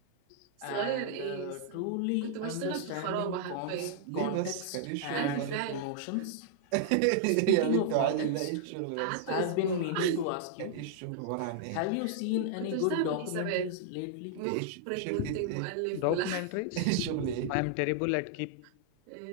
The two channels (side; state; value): both; different; correlation -0.01